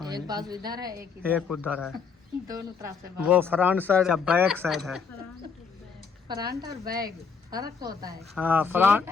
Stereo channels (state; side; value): quieter; right; 5.6 dB